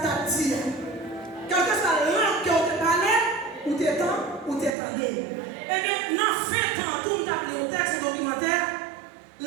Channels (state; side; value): drops out; left; at 4.8 s